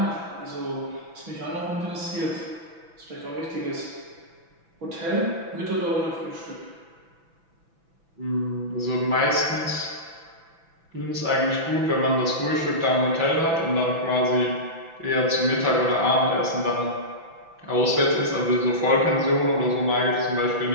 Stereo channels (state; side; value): late; left; 6.0 ms